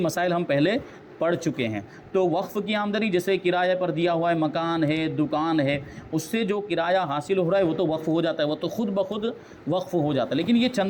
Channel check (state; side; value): identical; both; correlation 1.00